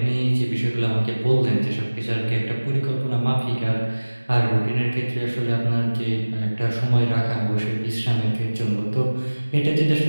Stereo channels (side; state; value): both; inverted; correlation -1.00